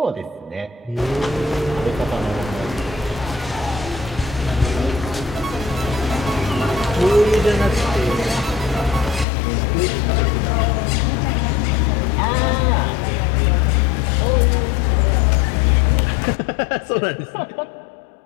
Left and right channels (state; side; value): drops out; right; at 9.2 s